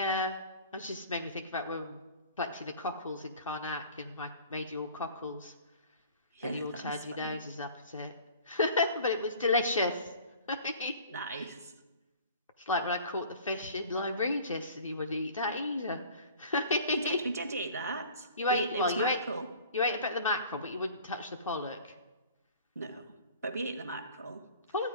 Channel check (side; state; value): both; inverted; correlation -0.46